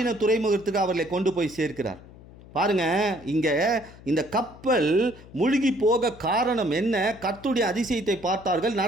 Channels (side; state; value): left; noise; hum, 20 dB below the sound